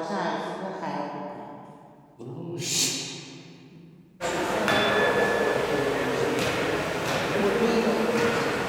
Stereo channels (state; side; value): identical; both; correlation 1.00